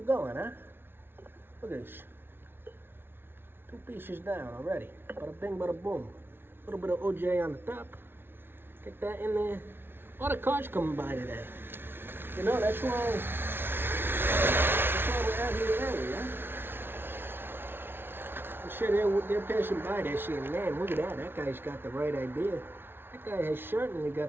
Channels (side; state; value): left; late; 0.11 ms